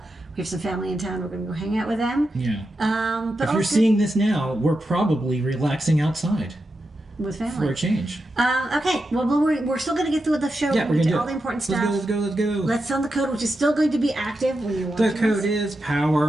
have some family in town. We're going to go hang out with them. Yeah. But if you're seeing this now, we're probably relaxing outside. With family. For a change. Okay, well, we're still going to get through the show. Yeah, we're going to do all the important stuff. Let's go. Let's sound the code, which is still going to be active when you're watching The code is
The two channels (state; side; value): normal; both; correlation 0.88